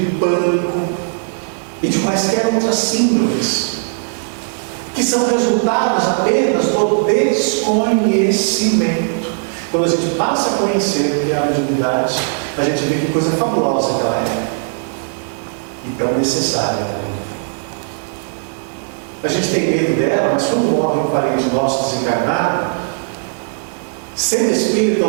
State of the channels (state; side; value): silent; left; 68 dB below the other